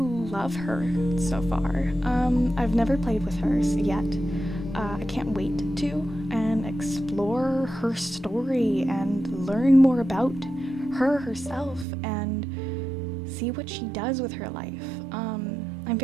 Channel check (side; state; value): left; drops out; at 11.9 s